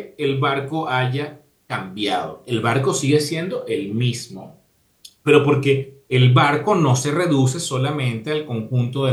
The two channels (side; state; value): both; identical; correlation 1.00